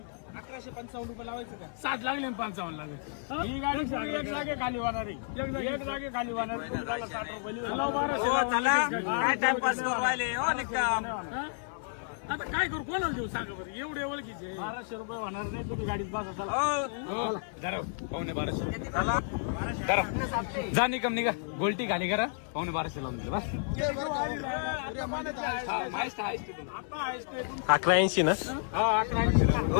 ₹1155 लावायचं का 7 लागले 55 लागले. ही गाडी एक जागे खाली वाहणार आहे. एक जागे खाली वाहणार आहे. तुम्हाला ₹60 आता काय करू कोणाला देऊ सांगा बरं. एवढे ओळखीचे ₹1200 होणार नाही. तुम्ही गाडीत बसा चला. जा निकम निघा. गोलटी खाली करा. ₹1200 लावून दे बस. 1180 ना. हा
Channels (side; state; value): right; silent; digital silence